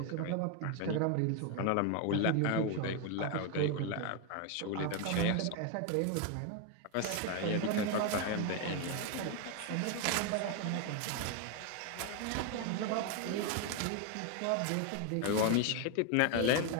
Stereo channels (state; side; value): different; both; correlation 0.01